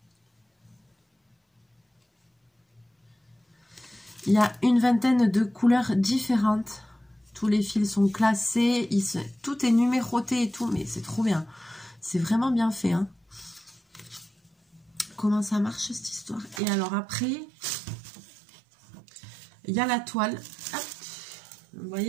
Il y a une vingtaine de couleurs différentes. Tous les fils sont classés. Tout est numéroté et tout, mais c'est trop bien. C'est vraiment bien fait, hein. Comment ça marche, cette histoire? Et alors après, il y a la toile. Hop. Vous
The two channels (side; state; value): left; drops out; at 16.6 s